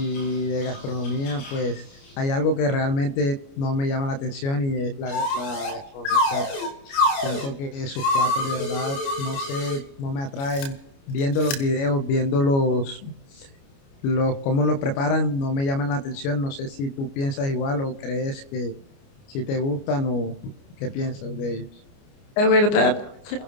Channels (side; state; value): right; late; 29 ms